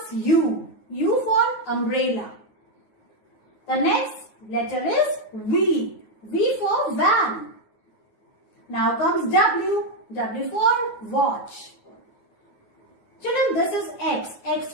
U. U for umbrella. The next letter is V. V for van. Now comes W. W for watch. Children, this is X. X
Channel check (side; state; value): right; late; 9.4 ms